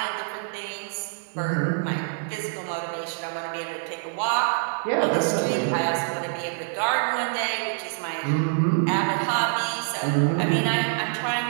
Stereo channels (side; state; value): left; silent; digital silence